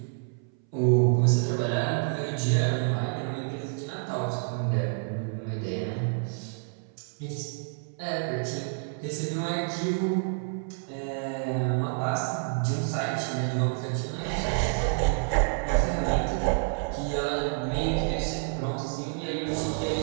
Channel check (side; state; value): left; silent; 59 dB below the other